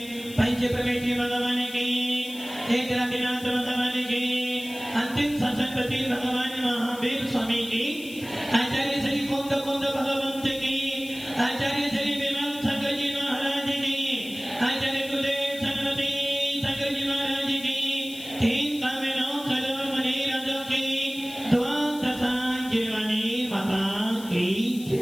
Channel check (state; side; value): noise; left; hiss, 16 dB below the sound